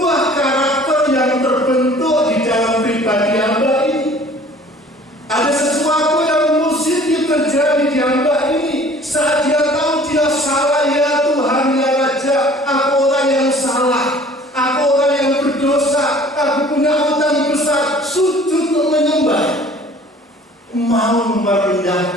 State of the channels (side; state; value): both; normal; correlation 0.50